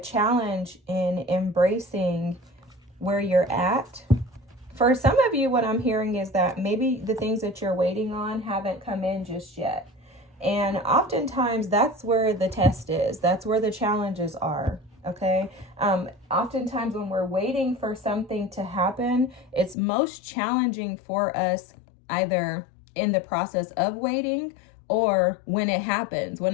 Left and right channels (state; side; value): drops out; right; at 19.8 s